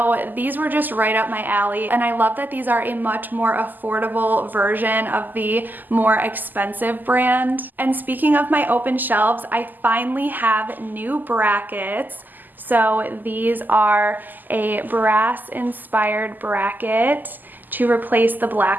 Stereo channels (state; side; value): late; left; 0.086 ms